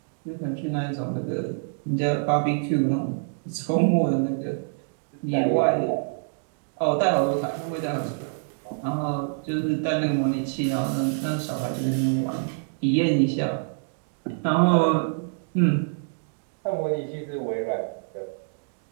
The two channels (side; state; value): left; silent; digital silence